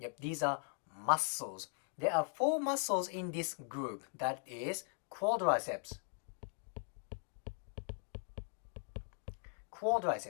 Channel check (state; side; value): silent; right; 51 dB below the other